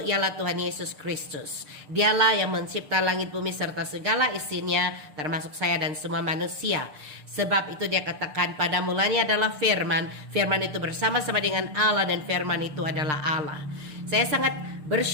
ialah Tuhan Yesus Kristus. Dialah yang mencipta langit bumi serta segala isinya, termasuk saya dan semua manusia. Sebab itu dia katakan, pada mulanya adalah firman. Firman itu bersama-sama dengan Allah, dan firman itu adalah Allah. Saya sangat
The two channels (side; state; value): left; late; 6.6 ms